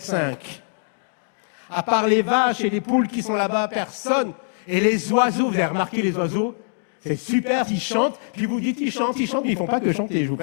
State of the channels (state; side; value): silent; right; digital silence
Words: À part les vaches et les poules qui sont là-bas, personne. Et les oiseaux, vous avez remarqué les oiseaux? C'est super, ils chantent. Puis vous dites, ils chantent, mais ils ne font pas que chanter, je vous